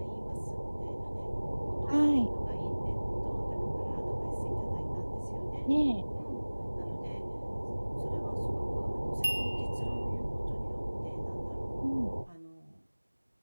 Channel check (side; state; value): both; inverted; correlation -1.00